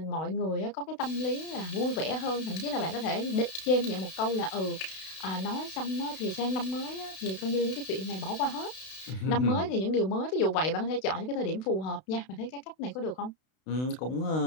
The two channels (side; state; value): right; late; 32 ms